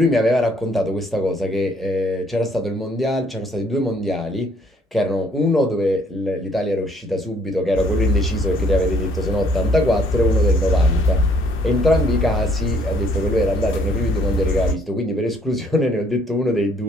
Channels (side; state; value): both; normal; correlation 0.63